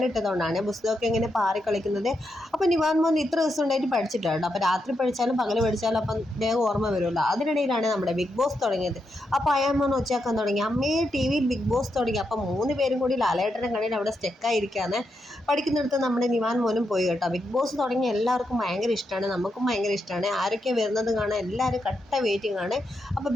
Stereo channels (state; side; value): normal; both; correlation 0.83